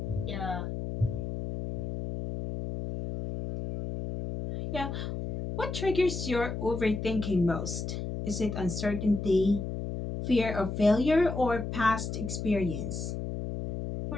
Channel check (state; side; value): noise; left; hum, 5 dB below the sound